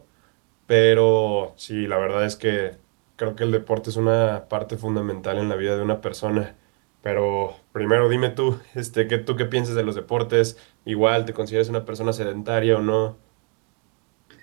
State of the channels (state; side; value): quieter; left; 39.2 dB